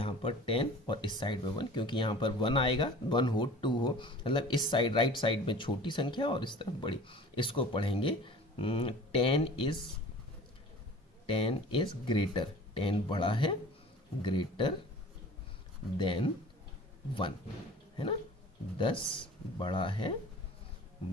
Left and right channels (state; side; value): normal; both; correlation 0.43